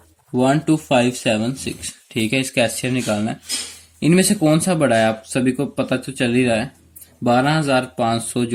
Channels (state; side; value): identical; both; correlation 1.00